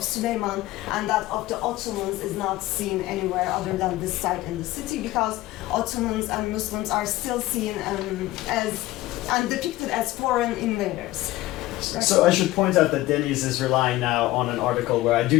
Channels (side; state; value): right; quieter; 17.2 dB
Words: Süleyman and that of the Ottomans is not seen anywhere other than this site in the city, because Ottomans and Muslims are still seen and depicted as foreign invaders. So I should point out that Deniz is relying now on an article where I